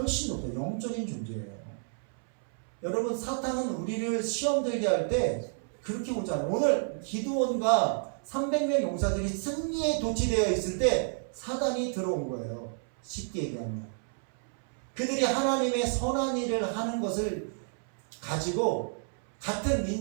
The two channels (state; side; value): silent; left; 58 dB below the other